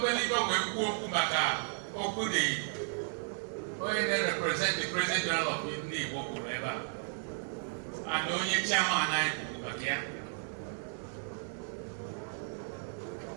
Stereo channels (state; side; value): silent; left; digital silence